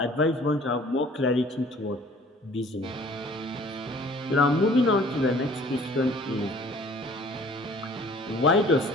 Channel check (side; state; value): both; normal; correlation 0.52